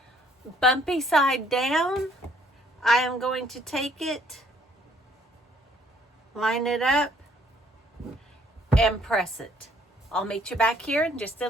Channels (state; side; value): normal; both; correlation 0.63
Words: Bumpy side down. I am going to take it, line it up, and press it. I'll meet you back here in just